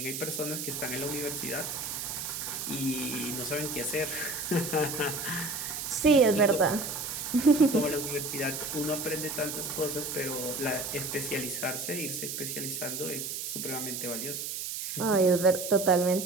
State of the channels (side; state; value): right; noise; hiss, 5 dB below the sound